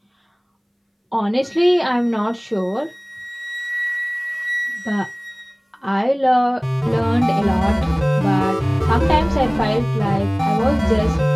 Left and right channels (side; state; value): both; identical; correlation 1.00